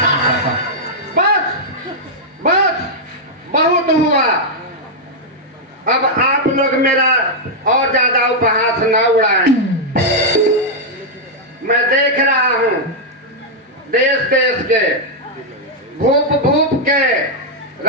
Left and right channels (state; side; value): normal; both; correlation -0.04